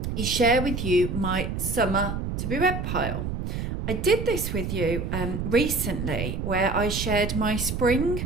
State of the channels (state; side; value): noise; right; rumble, 3 dB below the sound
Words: is share with you my summer to be read pile. I did this with you recently where I shared my spring